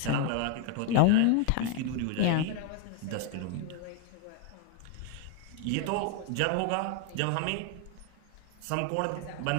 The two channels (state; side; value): different; both; correlation 0.01